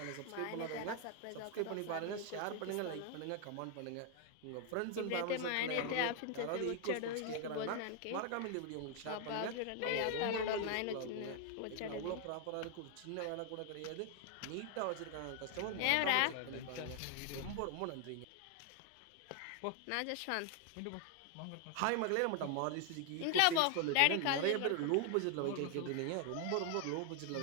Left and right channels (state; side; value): different; both; correlation 0.00